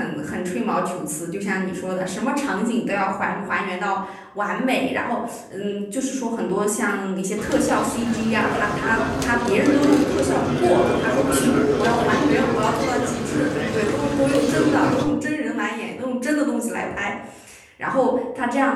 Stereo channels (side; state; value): both; identical; correlation 1.00